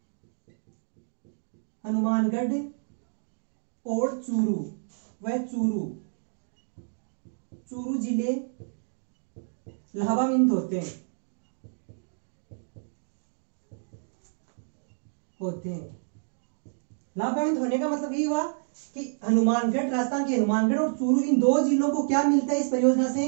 और चूरू जिले लाभान्वित होते हैं। लाभान्वित होने का मतलब ये हुआ कि हनुमानगढ़, राजस्थान के हनुमानगढ़ और चूरू, इन 2 जिलों को क्या मिलता है, इस परियोजना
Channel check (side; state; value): left; silent; digital silence